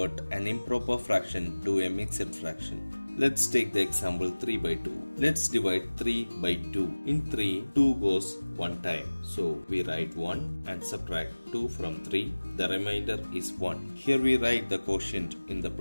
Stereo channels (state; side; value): inverted; both; correlation -1.00